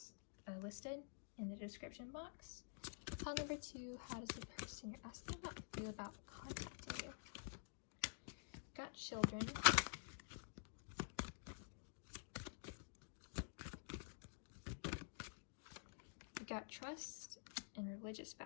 listed in the description box. Pile number 2, how does the person you're asking about feel about contacting you? Got children. Got trust and religious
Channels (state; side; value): silent; right; digital silence